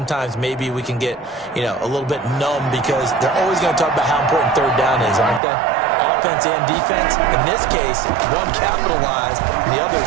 maybe we can get, a little bit numb because they're always going to talk about how important 3rd down is, aren't they? Offense and defense. In this case, one capitalized, and the other,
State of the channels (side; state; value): left; drops out; at 5.4 s